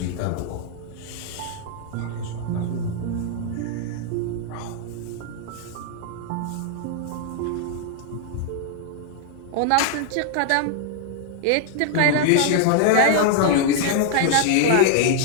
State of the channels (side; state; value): both; different; correlation 0.00